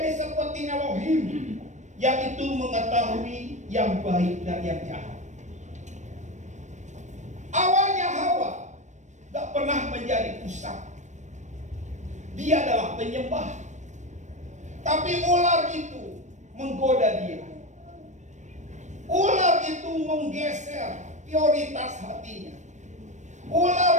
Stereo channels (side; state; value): left; late; 0.34 ms